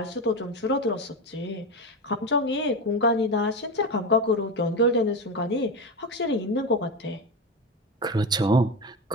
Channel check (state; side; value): normal; both; correlation 0.19